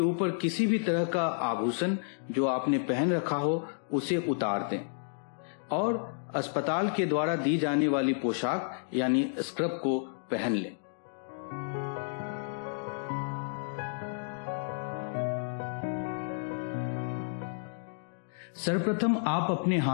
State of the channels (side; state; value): right; silent; digital silence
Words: किसी भी तरह का आभूषण जो आपने पहन रखा हो उसे उतार दें और अस्पताल के द्वारा दी जाने वाली पोशाक यानी स्क्रब को पहन लें। सर्वप्रथम आप अपने